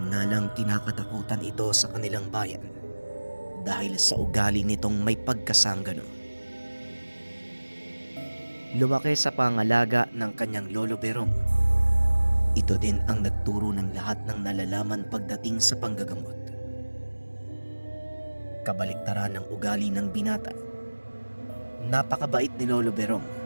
nga lang kinakatakutan ito sa kanilang bayan dahil sa ugali nitong may pagkasanggano. Lumaki sa pangalaga ng kanyang lolo Berong. Ito din ang nagturo ng lahat ng nalalaman pagdating sa panggagamot. Kabaliktaran ng ugali ng binata. Napakabait ni Lolo Berong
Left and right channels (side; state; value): both; inverted; correlation -1.00